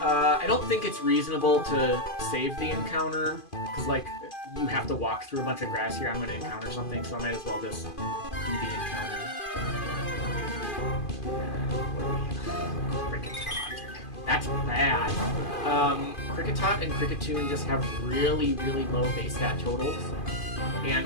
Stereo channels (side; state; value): right; late; 2.5 ms